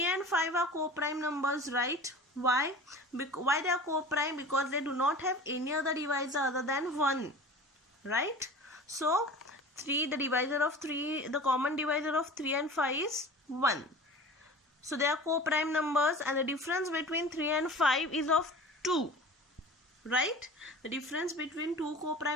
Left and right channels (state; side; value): normal; both; correlation 0.38